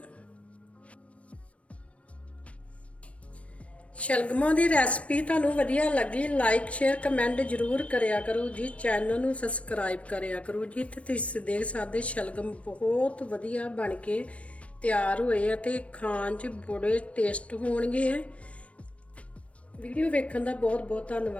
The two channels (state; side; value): late; right; 0.063 ms